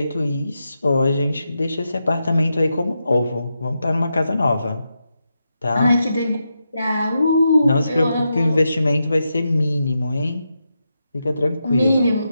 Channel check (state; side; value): inverted; both; correlation -0.86